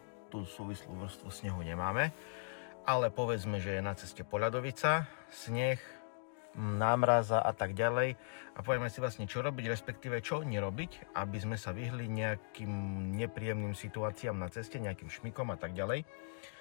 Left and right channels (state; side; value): silent; right; digital silence